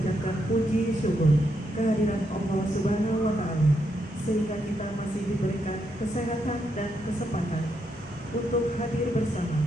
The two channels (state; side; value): normal; both; correlation 0.79